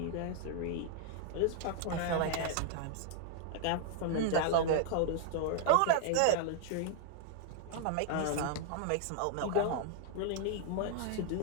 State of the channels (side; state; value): both; different; correlation -0.01